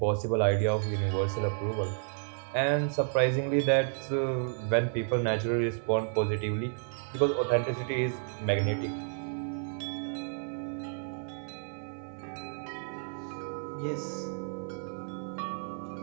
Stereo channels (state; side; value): silent; left; digital silence